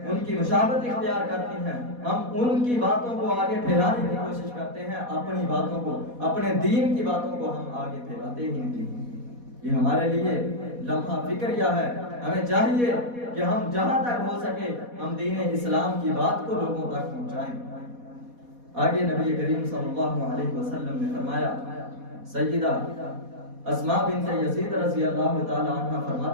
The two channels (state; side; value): late; left; 4.1 ms